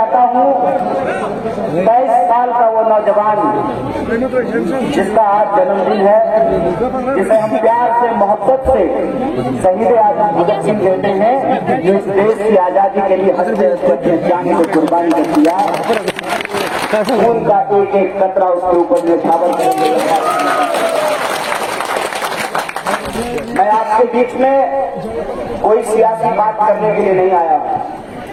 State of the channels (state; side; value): identical; both; correlation 1.00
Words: हूँ 23 साल का वो नौजवान जिसका आज जन्मदिन है, जिसे हम प्यार से मोहब्बत से शहीद आजम भगत सिंह कहते हैं, जो इस देश की आजादी के लिए हंसते हंसते अपने जान को कुर्बानी कर दिया। खून का एक एक कतरा उसके ऊपर निछावर कर दिया। मैं आपके बीच में कोई सियासी बात करने के लिए नहीं आया हूं।